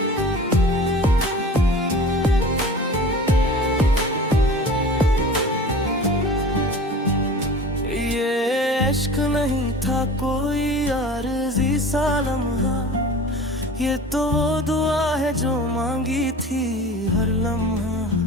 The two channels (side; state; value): both; normal; correlation 0.39